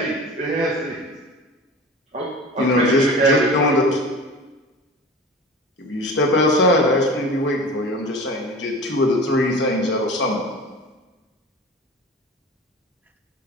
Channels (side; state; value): both; normal; correlation 0.36